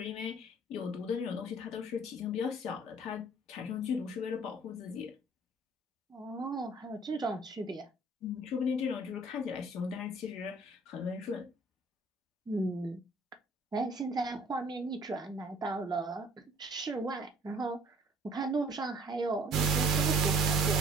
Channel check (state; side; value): normal; both; correlation 0.55